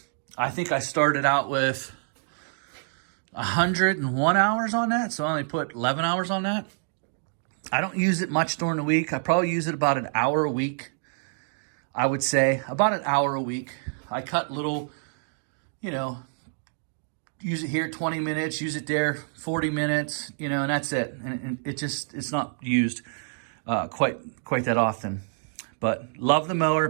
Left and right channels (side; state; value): left; silent; digital silence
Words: I think I started out with 101 hours on that, so I only put 11 hours on that. I don't use it much during the week. I probably use it about an hour a week. I would say about an hour a week. I cut little, you know, use it here 20 minutes, use it there 40 minutes, you know, and that's it. And it's not used quite that often. But love the mower,